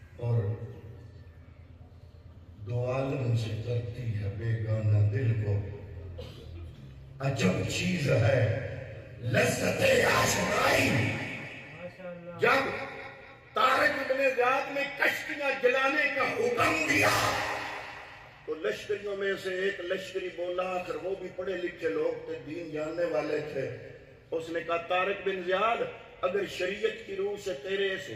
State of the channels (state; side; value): identical; both; correlation 1.00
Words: اور دو عالم سے کرتی ہے بیگانہ دل کو، عجب چیز ہے لذت آشنائی۔ جب طارق ابن زیاد نے کشتیاں جلانے کا حکم دیا تو لشکریوں میں سے ایک لشکری بولا، آخر وہ بھی پڑھے لکھے لوگ تھے، دین جاننے والے تھے، اس نے کہا طارق بن زیاد اگر شریعت کی روح سے تیرے اس